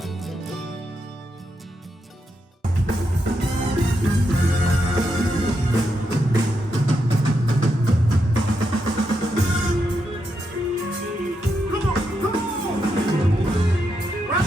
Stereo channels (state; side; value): normal; both; correlation 0.83